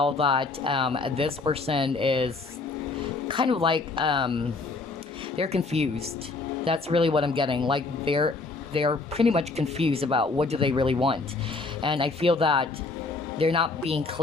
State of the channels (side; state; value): right; quieter; 3.8 dB